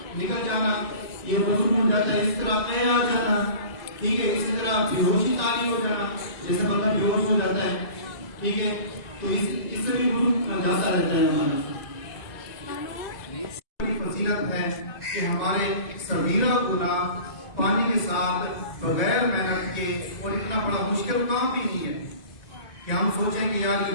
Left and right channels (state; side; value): late; right; 2.0 ms